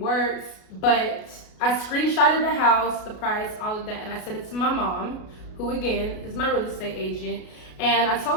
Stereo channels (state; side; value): late; right; 33 ms